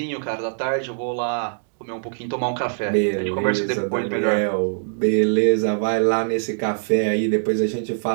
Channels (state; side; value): silent; left; digital silence